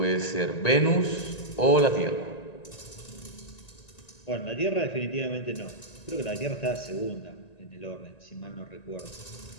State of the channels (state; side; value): late; right; 1.9 ms